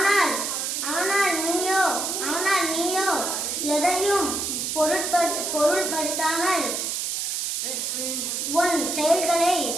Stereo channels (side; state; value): right; noise; hiss, 1 dB below the sound